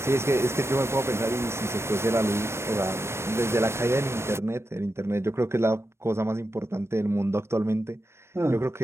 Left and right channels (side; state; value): left; late; 0.13 ms